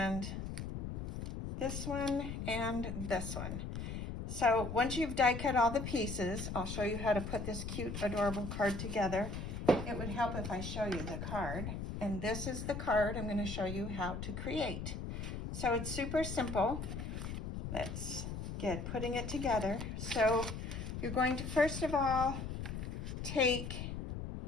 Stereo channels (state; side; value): noise; left; rumble, 5 dB below the sound